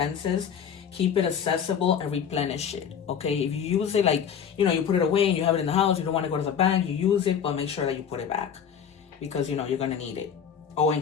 Keep it accessible and replenish it. Okay, if you use it, like, you know, you put it away and you have it in the house, you don't want to go to the bank, you use it, but make sure that you put it back, because you know you're gonna need it, or in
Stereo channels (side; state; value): right; quieter; 7.9 dB